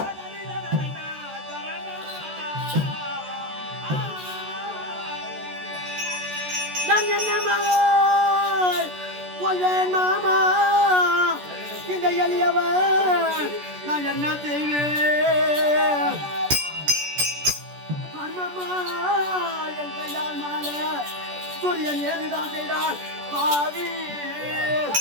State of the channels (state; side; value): late; left; 14 ms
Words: நான் என்ன கொள்வேன் மாமா இந்த எளியவன் நான் என்ன செய்வேன்? மாமா என் கையால் மாலை சூரியன் ஏதுதான் செய்தான் பாவி.